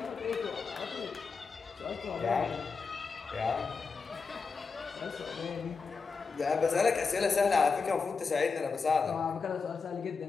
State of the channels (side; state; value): right; quieter; 4.9 dB